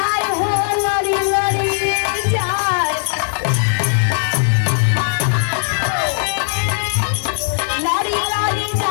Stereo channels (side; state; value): right; silent; digital silence